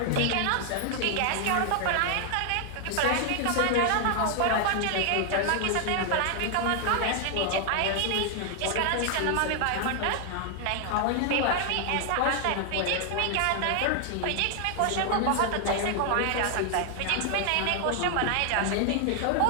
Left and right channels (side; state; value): both; different; correlation 0.00